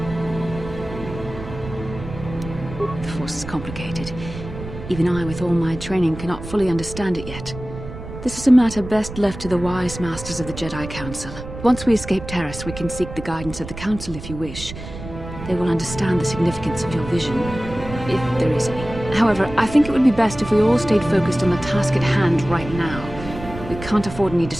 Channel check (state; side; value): noise; right; rumble, 11 dB below the sound